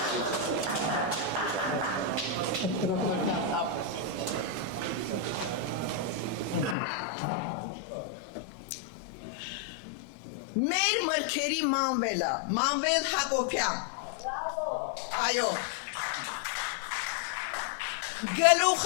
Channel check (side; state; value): right; drops out; at 6.8 s